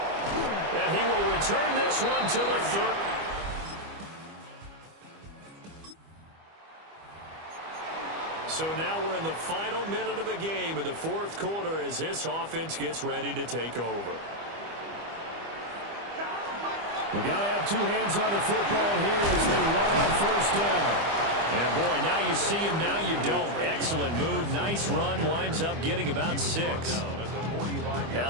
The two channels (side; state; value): left; late; 25 ms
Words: And he will return this one to the 3rd. So now we're in the final minute of the game in the 4th quarter as this offense gets ready to take over. We've got to have 2 hands on the football here as they run on first down. And boy, now you see him, now you don't. Excellent move, nice run, winds up getting about 6. Now